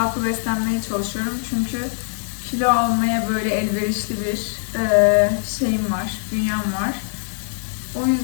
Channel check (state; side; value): silent; right; 57 dB below the other